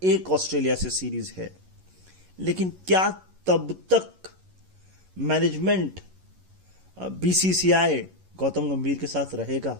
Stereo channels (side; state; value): left; late; 11 ms